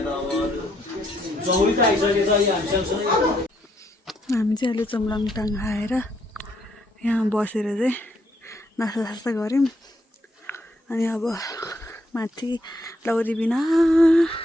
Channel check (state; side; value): normal; both; correlation 0.73